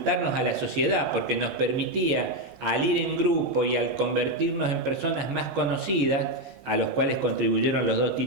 a la sociedad, porque nos permitía, al ir en grupo y al convertirnos en personas más conocidas, a los cuales contribuyeron los 2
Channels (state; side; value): late; left; 17 ms